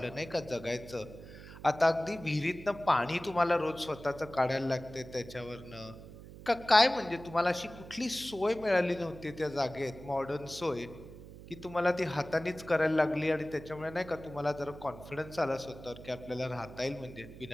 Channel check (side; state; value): right; noise; hum, 15 dB below the sound